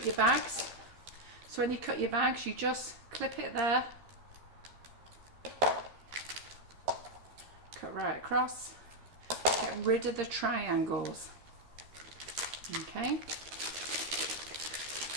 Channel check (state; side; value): late; left; 13 ms